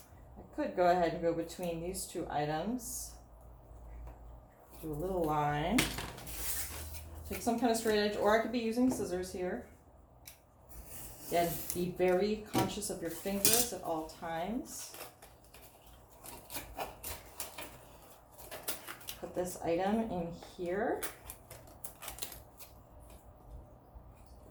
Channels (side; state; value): both; identical; correlation 1.00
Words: I could go ahead and go between these two items, do a little line, take some kind of straight edge, or I could be using scissors here. Again, be very conscious of your fingers at all times. Put this item in here.